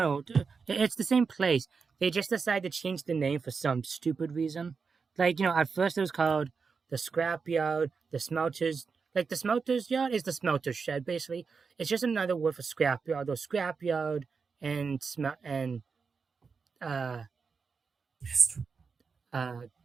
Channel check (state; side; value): quieter; left; 5.2 dB